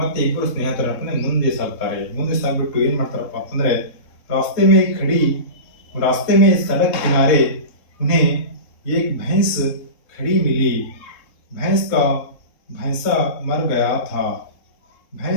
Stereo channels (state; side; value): late; right; 3.4 ms